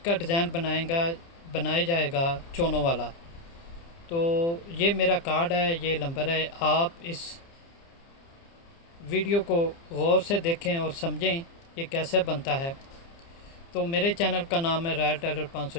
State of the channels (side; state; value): right; late; 30 ms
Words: डिज़ाइन बनाया जाएगा चोनों वाला। तो ये मेरा कार्ड है, ये नंबर है। आप इस वीडियो को गौर से देखें और समझें ये कैसे बनता है। तो मेरे चैनल का नाम है रॉयल टेलर